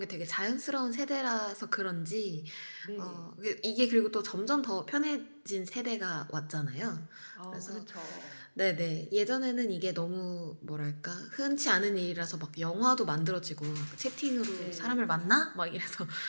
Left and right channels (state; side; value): inverted; both; correlation -1.00